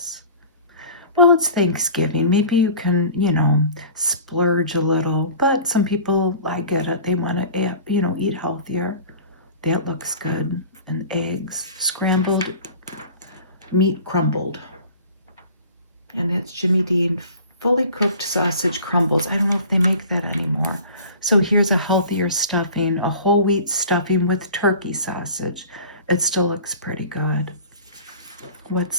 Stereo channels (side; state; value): both; inverted; correlation -0.42